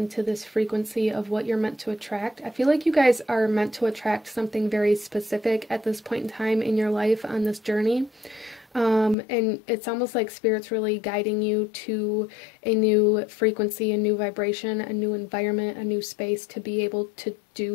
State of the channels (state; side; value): drops out; right; at 9.2 s